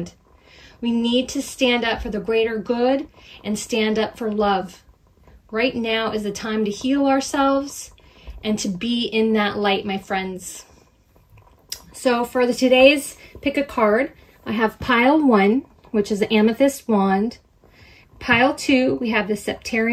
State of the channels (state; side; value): identical; both; correlation 1.00